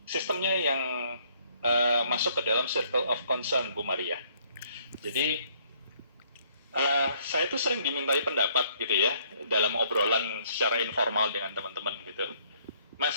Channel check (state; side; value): inverted; both; correlation -0.64